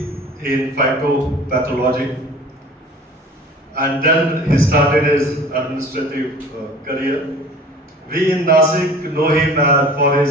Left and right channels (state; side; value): normal; both; correlation 0.44